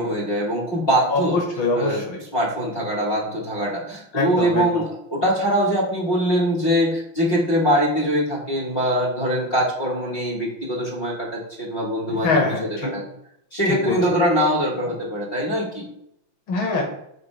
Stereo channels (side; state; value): right; late; 5.5 ms